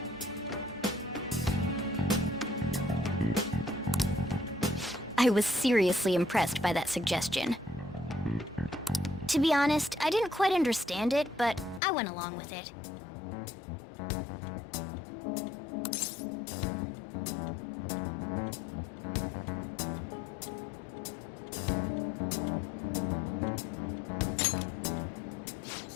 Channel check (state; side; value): drops out; right; at 11.8 s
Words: I was seriously impressed by that suggestion. To be honest, I didn't quite understand it, but I went along with it.